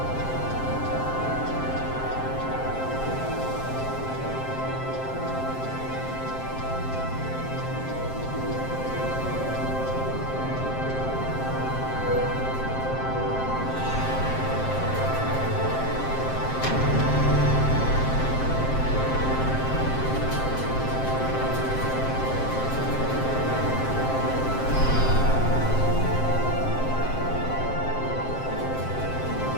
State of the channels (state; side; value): late; right; 7.6 ms